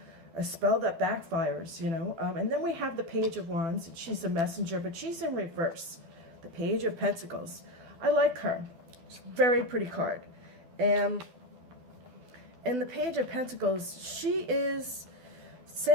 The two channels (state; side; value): late; left; 12 ms